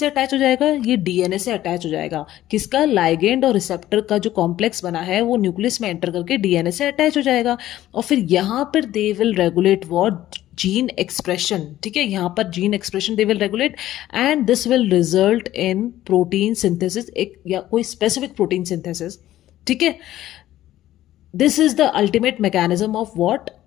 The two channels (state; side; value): quieter; right; 13.9 dB